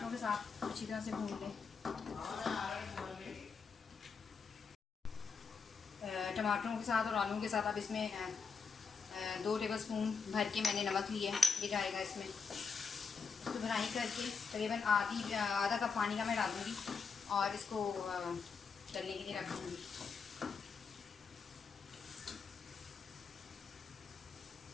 के साथ अच्छी तरह से भून लें। टमाटरों के साथ और आलू के साथ अब इसमें 2 टेबलस्पून भर के मैंने नमक लिया है, ये जाएगा इसमें। इसको भुनाई करके तकरीबन आधा कप पानी का मैं डालूँगी और इसको गलने के लिए रख दूँगी।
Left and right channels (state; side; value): quieter; right; 5.4 dB